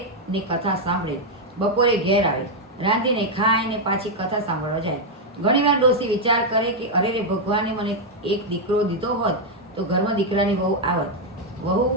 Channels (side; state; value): both; normal; correlation 0.00